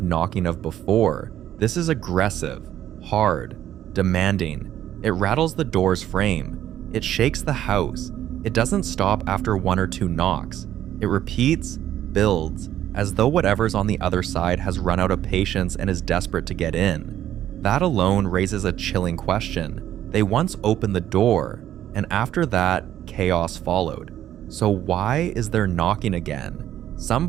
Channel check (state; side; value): quieter; left; 11.7 dB